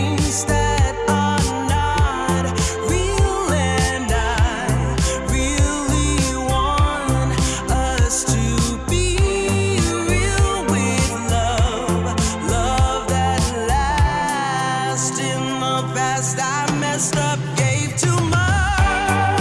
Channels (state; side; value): identical; both; correlation 1.00